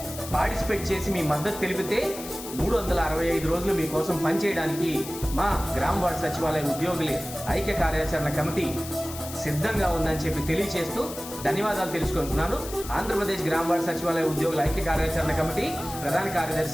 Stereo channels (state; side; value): noise; left; hiss, 12 dB below the sound